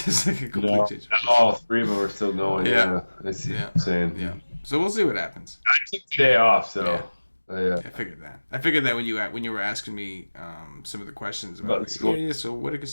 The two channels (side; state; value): both; inverted; correlation -1.00